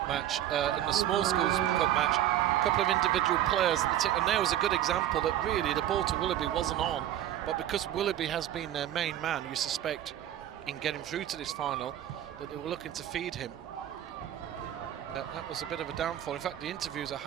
match, in the small Schools Cup match, a couple of individual players, and there was a good example that really the ball to Willoughby wasn't on, but because Willoughby has been their main man, you suspect, in getting through to this final, that they were looking to feed him. That was a bit of a downfall. In fact, the interviews I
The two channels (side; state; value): left; quieter; 12.0 dB